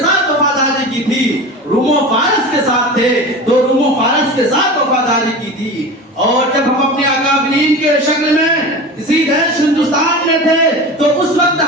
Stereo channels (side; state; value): both; normal; correlation 0.31